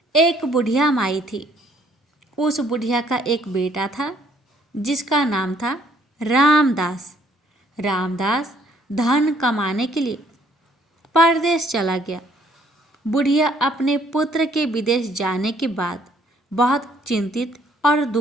एक बुढ़िया माई थी। उस बुढ़िया का एक बेटा था जिसका नाम था रामदास। रामदास धन कमाने के लिए परदेश चला गया। बुढ़िया अपने पुत्र के विदेश जाने के बाद बहुत चिंतित और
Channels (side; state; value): both; normal; correlation 0.64